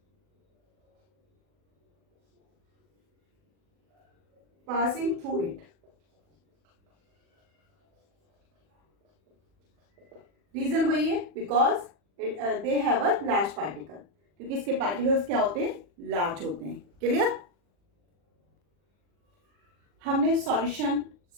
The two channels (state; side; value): late; left; 40 ms